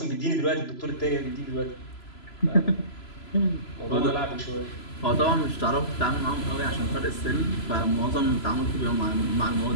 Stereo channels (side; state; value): right; late; 3.0 ms